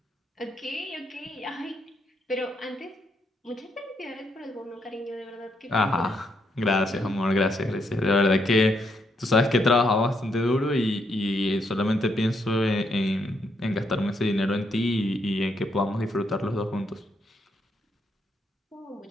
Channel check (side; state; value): both; normal; correlation 0.76